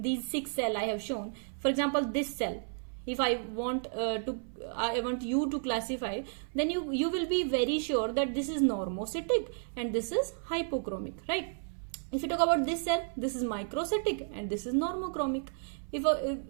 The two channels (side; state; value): left; silent; 56 dB below the other